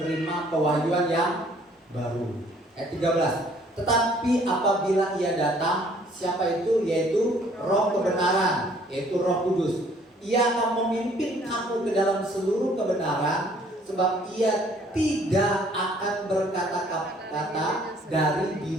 pewahyuan yang baru. Ayat 13. Tetapi apabila ia datang, siapa itu? Yaitu Roh kebenaran, yaitu Roh Kudus. Ia akan memimpin kamu ke dalam seluruh kebenaran, sebab ia tidak akan berkata-kata dari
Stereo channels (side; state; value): both; normal; correlation 0.59